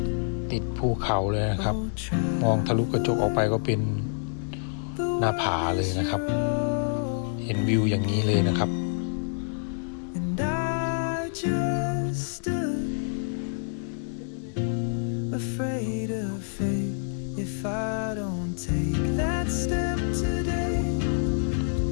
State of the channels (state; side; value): silent; right; digital silence